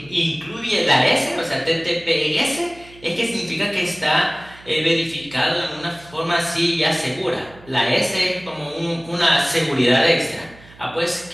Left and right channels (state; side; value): noise; right; hum, 23 dB below the sound